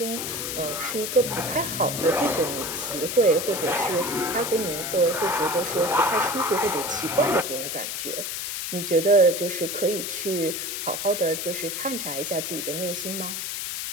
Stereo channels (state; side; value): noise; left; hiss, 4 dB below the sound